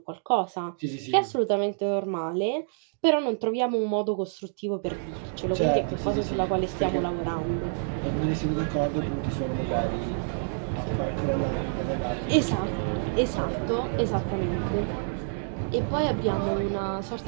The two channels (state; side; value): silent; left; digital silence